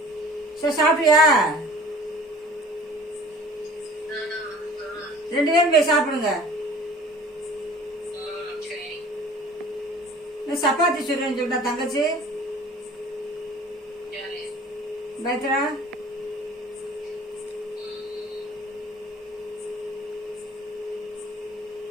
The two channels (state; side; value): normal; both; correlation 0.46